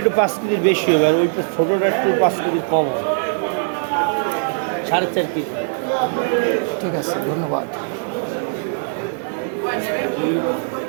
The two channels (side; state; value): left; silent; digital silence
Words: 5 কেজির বেশি হবে, আর ওইটা ছোটোটা একটু 5 কেজি কম হবে। 4.5 কেজি। ঠিক আছে, ধন্যবাদ